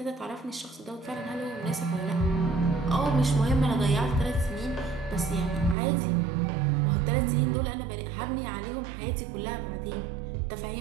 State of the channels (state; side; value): drops out; left; at 5.8 s